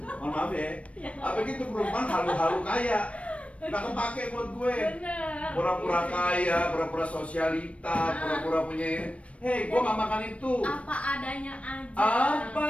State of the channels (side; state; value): right; late; 0.063 ms